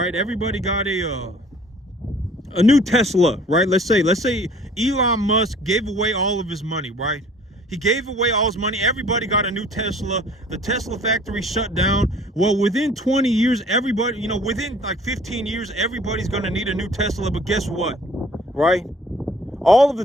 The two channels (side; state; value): both; normal; correlation 0.52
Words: Everybody got a new Tesla, right? Let's say Elon Musk gave away all of his money, right? He gave away all his money. Everybody got a new Tesla. The Tesla factory shut down. Well, within 20 years, everybody, within like 15 years, everybody's going to need a new Tesla. But guess what, right? All of